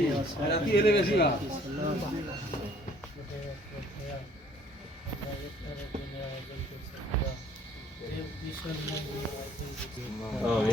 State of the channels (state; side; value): normal; both; correlation 0.58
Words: রাতি এলে বেশি ভালো